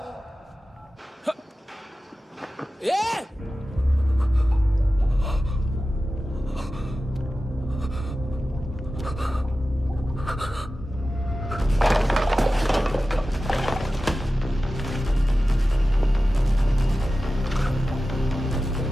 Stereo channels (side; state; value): both; normal; correlation 0.94